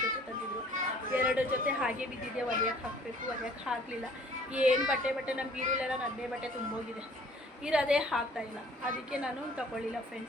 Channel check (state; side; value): normal; both; correlation 0.54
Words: ಜೊತೆ ತಂದಿದ್ರು. 2 ಜೊತೆ ಹಾಗೆ ಬಿದ್ದಿದೆ, ಒಲೆಯಕ್ಕೆ ಹಾಕಬೇಕು, ಒಲೆಯಕ್ಕೆ ಹಾಕಲಿಲ್ಲ. ಏನು ಬಟ್ಟೆ ನಮ್ಮ ಬೀರುಲೆಲ್ಲ ನನ್ನೇ ಬಟ್ಟೆ ತುಂಬೋಗಿದೆ, ಇರೋದೇ ಹಾಕ್ತಾಯಿಲ್ಲ. ಅದಕ್ಕೆ ನಾನು ತಗೊಳ್ಳಿಲ್ಲ